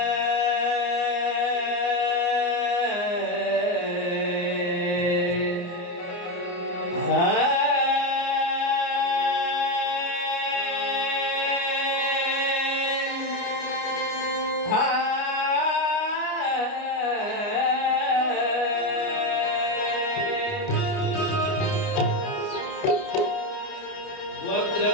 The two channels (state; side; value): late; right; 29 ms